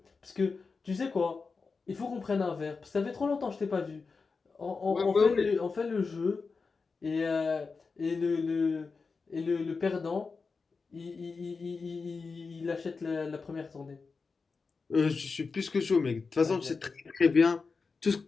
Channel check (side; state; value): right; quieter; 4.6 dB